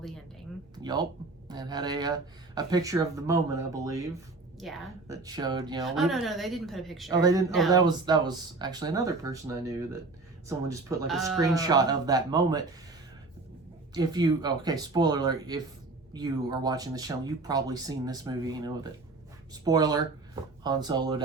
ending. Yup. And had a picture of the moment, I believe. Yeah. That showed, you know. Oh, no, they didn't put a picture. Oh, they didn't? No. Oh, that was actually another person I knew that someone just put like a screenshot of that moment. If you, okay, spoiler alert, if you are watching the show, you've probably seen this movie, you know, that, spoiler, Han Solo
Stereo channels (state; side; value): quieter; left; 3.4 dB